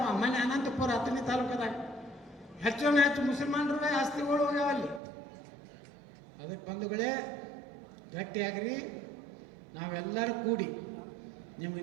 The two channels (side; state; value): left; drops out; at 5.0 s